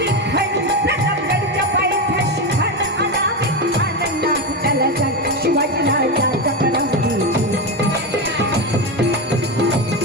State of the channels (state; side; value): normal; both; correlation 0.14